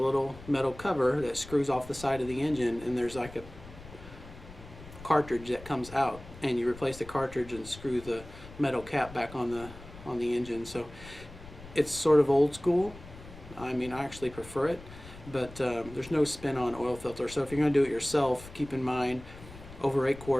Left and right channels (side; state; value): left; noise; rumble, 17 dB below the sound